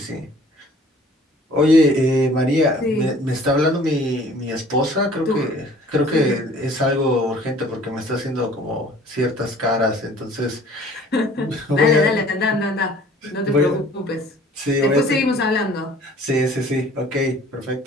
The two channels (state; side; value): normal; both; correlation 0.52